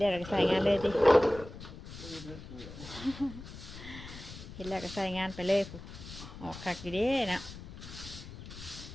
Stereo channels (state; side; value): noise; left; rumble, 13 dB below the sound